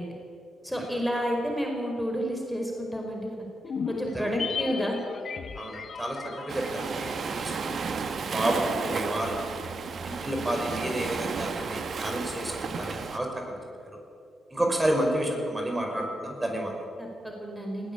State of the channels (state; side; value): normal; both; correlation 0.85